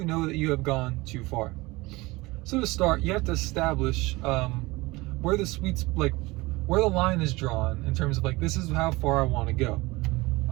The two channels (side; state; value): left; quieter; 21.9 dB